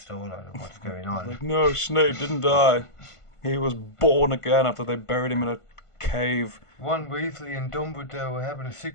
of what's going on. No, Snape didn't die. He was born again after they buried him in a cave. Ron Weasley and Dumbledore were having a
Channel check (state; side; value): late; right; 1.5 ms